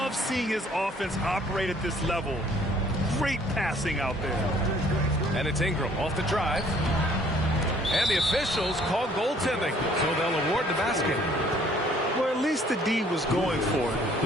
seeing his offense operate at this level. Great passing out there. And it's Ingram off the drive. And the officials call goaltending, so they'll award the basket. Well, at least the D was going for it,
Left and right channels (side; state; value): both; normal; correlation 0.59